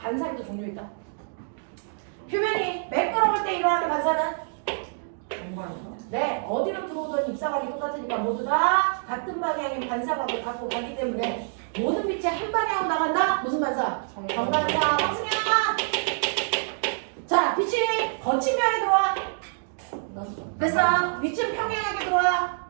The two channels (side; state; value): left; silent; digital silence